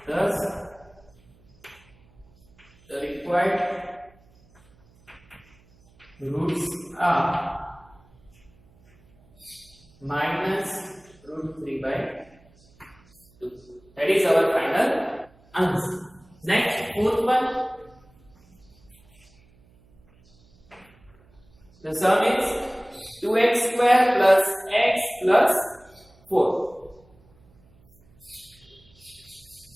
thus the required roots are minus root 3 by 2. That is our final answer. Next, fourth one. The sum is 2x square plus x plus 4.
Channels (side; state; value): right; noise; hum, 30 dB below the sound